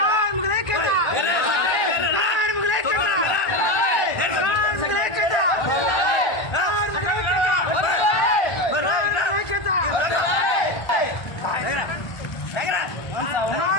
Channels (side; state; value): right; late; 1.4 ms